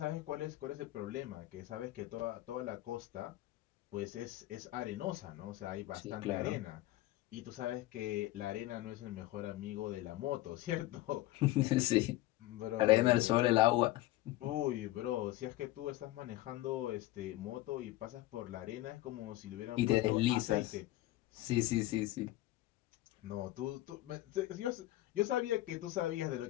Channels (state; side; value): quieter; right; 16.8 dB